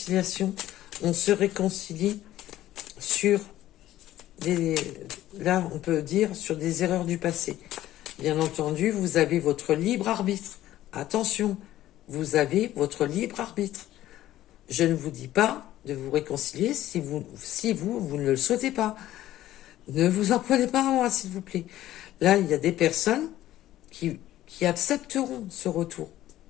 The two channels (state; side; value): quieter; right; 14.0 dB